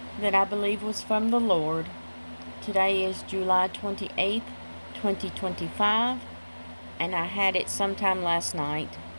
that I believe was from the Lord. Today is July 28th, 2025, and I had it sometime last night.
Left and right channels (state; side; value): inverted; both; correlation -1.00